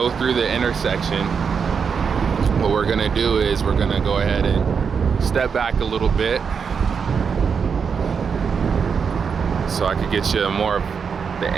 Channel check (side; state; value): left; quieter; 6.2 dB